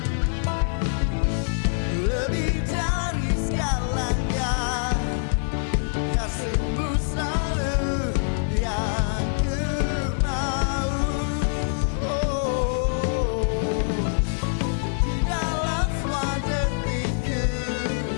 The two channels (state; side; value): silent; right; digital silence